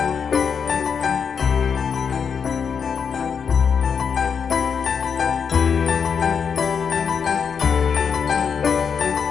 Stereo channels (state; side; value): quieter; right; 6.6 dB